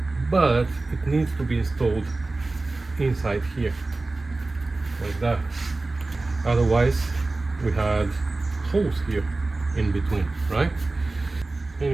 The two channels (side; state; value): left; quieter; 3.2 dB